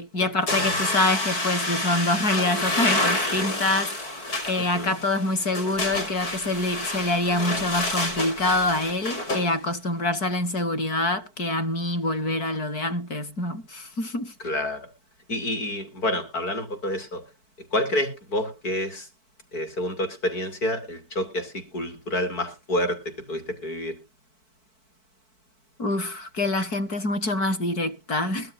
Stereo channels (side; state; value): right; late; 4.6 ms